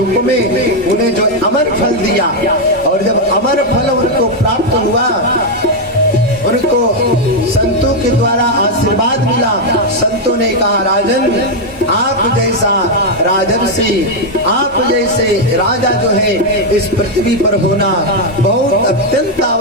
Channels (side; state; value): both; normal; correlation 0.01